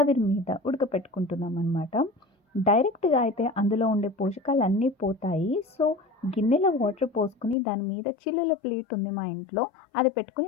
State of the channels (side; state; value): right; drops out; at 7.6 s